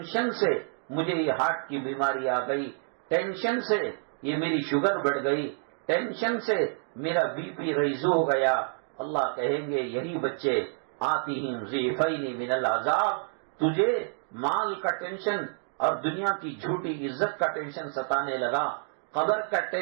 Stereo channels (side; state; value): left; silent; digital silence